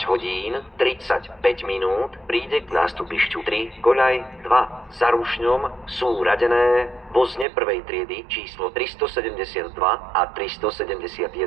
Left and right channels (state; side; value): drops out; left; at 7.5 s